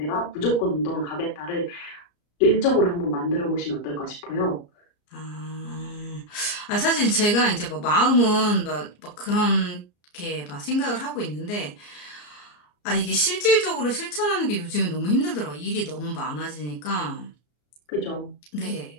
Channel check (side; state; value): right; late; 34 ms